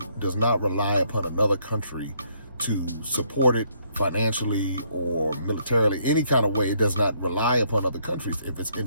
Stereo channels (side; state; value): both; inverted; correlation -0.70